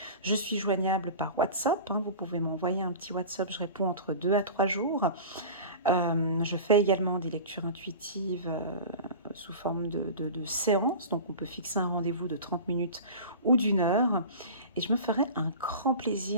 je suis joignable par WhatsApp. Hein. Vous pouvez m'envoyer un petit WhatsApp, je réponds entre 2 à 3 jours. Je fais également des lectures intuitives sous forme de séances, donc on peut fixer un rendez-vous de 30 minutes ou d'1 heure. Et je me ferai un grand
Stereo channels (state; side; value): inverted; both; correlation -0.34